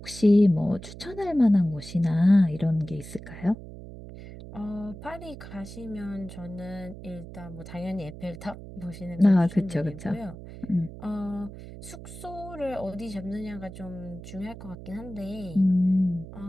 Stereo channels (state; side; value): noise; right; hum, 13 dB below the sound